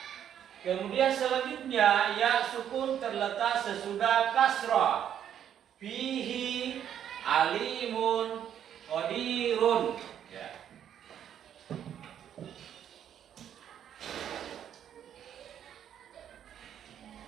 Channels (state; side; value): quieter; left; 9.7 dB